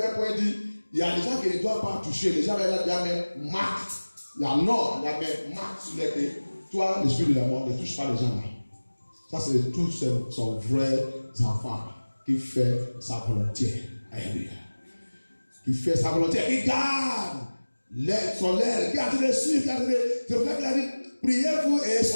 à un point dit, il y a des gens qui ne doivent pas toucher. Les gens là, il y a même marque, la norme, il y a même marque sur les pieds. Toi, l'esprit de la mort, ne touche pas les gens là. Ça, c'est tous son vrai enfant qui fait sa volonté. Alléluia. Qui fait sa volonté, qui garde son aile, qui a de suivre, qui a de. C'est pour ça qu'il a dit, priez-vous et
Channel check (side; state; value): both; inverted; correlation -1.00